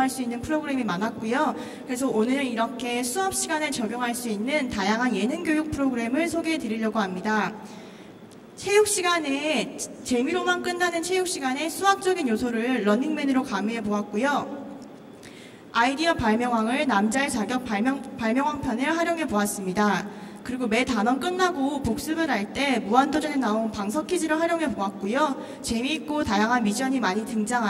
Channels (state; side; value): identical; both; correlation 1.00